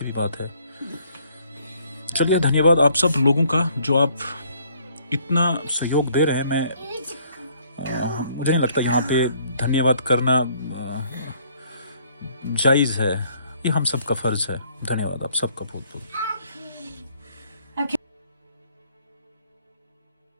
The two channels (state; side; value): inverted; both; correlation -0.63